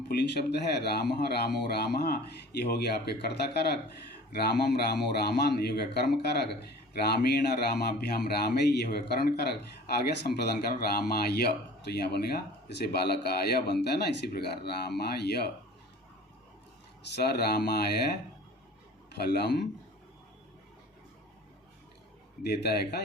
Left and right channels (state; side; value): normal; both; correlation 0.43